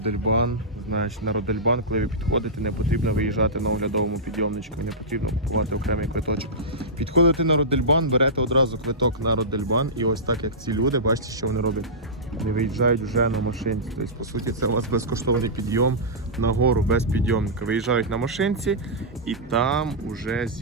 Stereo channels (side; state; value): both; normal; correlation -0.15